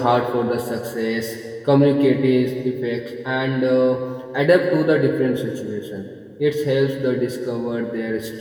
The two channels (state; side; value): identical; both; correlation 1.00